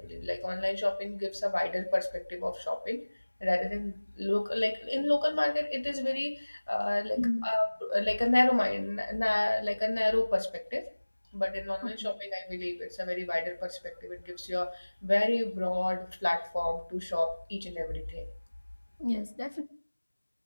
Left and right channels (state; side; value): inverted; both; correlation -1.00